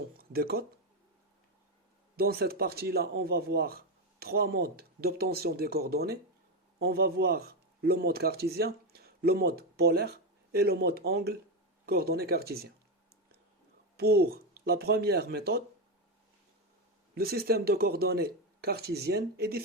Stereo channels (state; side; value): normal; both; correlation 0.10